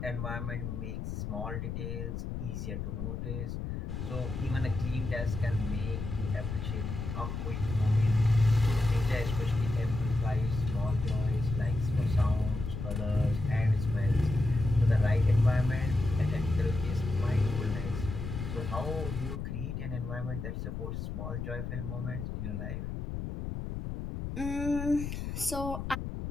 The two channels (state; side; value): noise; left; rumble, 5 dB below the sound